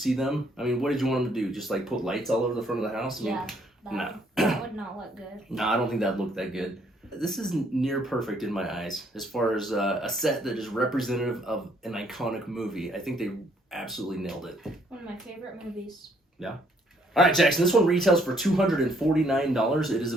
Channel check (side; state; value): both; normal; correlation 0.67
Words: them. I mean, what did you want them to do? Just like put lights all over the front of the house? Yeah, that would not look good. No, I don't think that'd look that good. This is near perfect in my eyes as far as a set that is representative of an iconic movie. I think they absolutely nailed it. One of my favorite movies. Yeah. All right, Jackson, this one retails for $249. It is